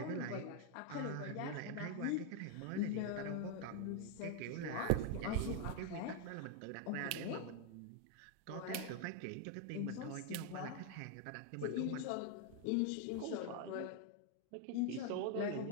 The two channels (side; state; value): both; different; correlation 0.00